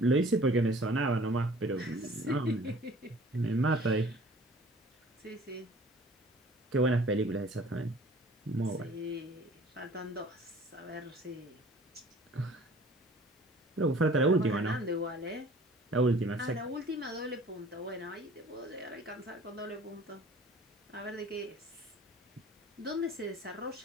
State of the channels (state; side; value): normal; both; correlation 0.49